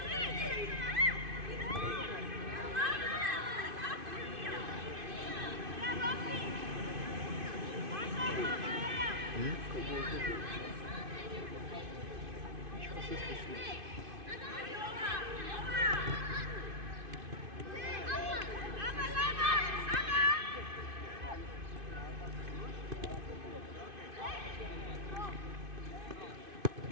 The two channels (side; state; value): left; late; 2.5 ms